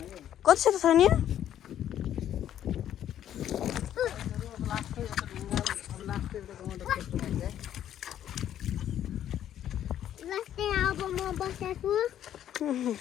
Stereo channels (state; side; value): quieter; right; 10.8 dB